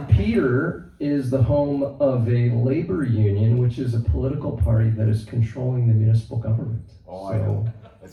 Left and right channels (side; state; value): both; identical; correlation 1.00